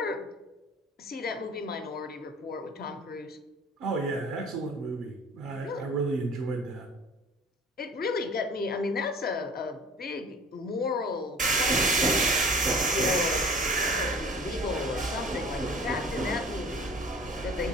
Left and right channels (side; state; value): both; normal; correlation 0.46